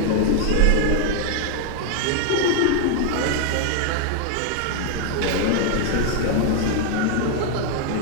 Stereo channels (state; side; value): different; both; correlation 0.00